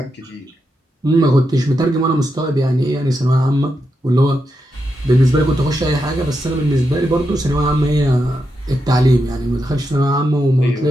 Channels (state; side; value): normal; both; correlation 0.85